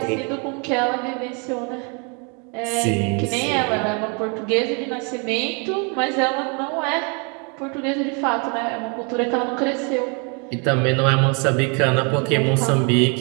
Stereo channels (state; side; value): quieter; left; 34.8 dB